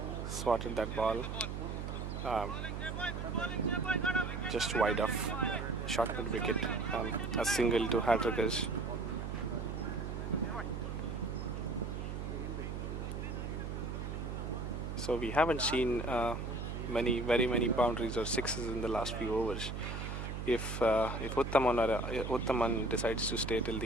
Just wide off. Short mid wicket. A single to Hattrickers. So we haven't seen very many boundaries or sixes in the last few overs. If Uttaman decides to stay till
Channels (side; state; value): right; noise; hum, 5 dB below the sound